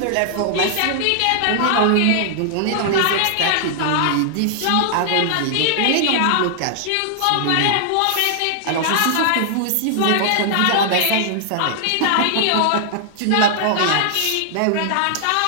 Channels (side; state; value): both; different; correlation -0.01